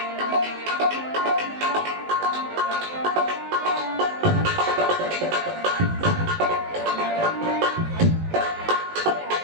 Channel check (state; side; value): late; left; 19 ms